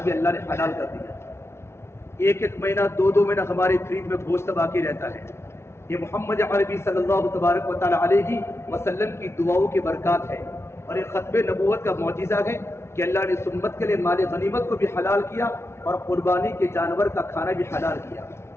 بھی اللہ نے حلال کر دیا۔ ایک مہینہ، دو مہینہ ہمارے فریج میں گوشت باقی رہتا ہے۔ یہ محمد عربی صلی اللہ تبارک و تعالیٰ علیہ وسلم کی دعاؤں کی برکات ہے، اور یہ ختم نبوت کا معجزہ ہے کہ اللہ نے اس امت کے لیے مال غنیمت کو بھی حلال کیا اور قربانی کے جانور کا کھانا بھی حلال کیا۔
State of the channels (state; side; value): late; right; 0.13 ms